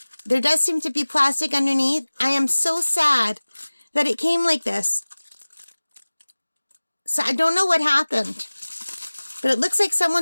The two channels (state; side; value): inverted; both; correlation -1.00